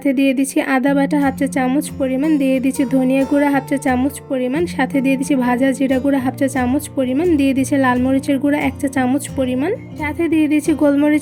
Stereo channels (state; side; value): identical; both; correlation 1.00